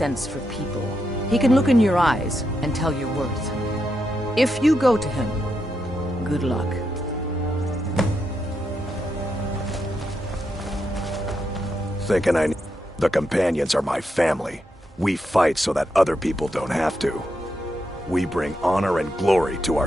for people. He can look in your eyes and tell your worth. If you go to him, good luck. Thinking the Companions are my family. We fight so that other people don't have to. We bring honor and glory to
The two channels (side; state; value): both; normal; correlation 0.83